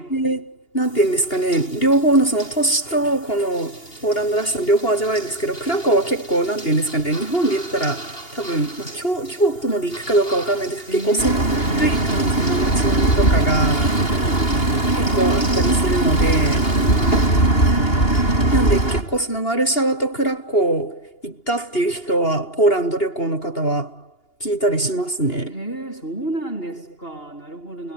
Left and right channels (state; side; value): late; right; 2.8 ms